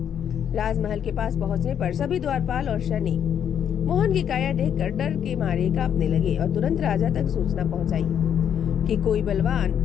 राजमहल के पास पहुंचने पर सभी द्वारपाल और सैनिक मोहन की काया देखकर डर के मारे कांपने लगे और तुरंत राजा तक सूचना पहुंचाई कि कोई बलवान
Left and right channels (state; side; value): quieter; right; 8.9 dB